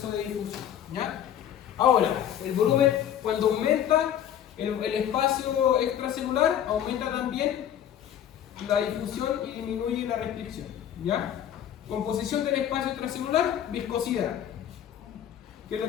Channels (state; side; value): quieter; right; 10.1 dB